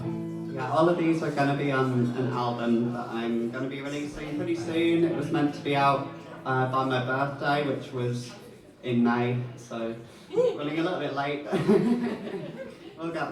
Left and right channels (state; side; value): identical; both; correlation 1.00